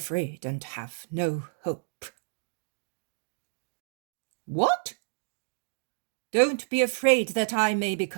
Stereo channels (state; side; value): silent; left; digital silence